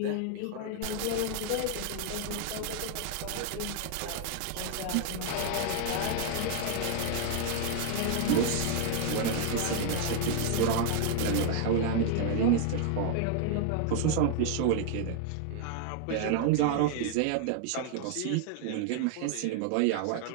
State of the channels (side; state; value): both; different; correlation 0.00